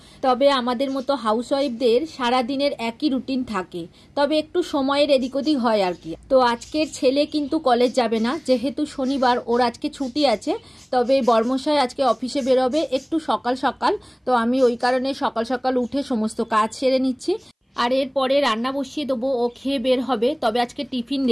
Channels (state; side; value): identical; both; correlation 1.00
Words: তবে আমাদের মতো হাউসওয়াইফদের সারাদিনের একই রুটিন থাকে, তবে একটু সময়ের এদিক ওদিক হয় আর কি। তো আজকের ছেলে কিন্তু কলেজ যাবে না, যেহেতু শনিবার ওর আজকে ছুটি আছে। তবে বর্মশাই আজকে অফিসে বেরোবে একটু সকাল সকাল, তো আমি ওই কারণে সকাল সকাল উঠে সমস্ত কাজ সেরে নিচ্ছি। আর এরপরে রান্না বসিয়ে দেবো, ও খেয়ে বের হবে। তবে আজকে টিফিন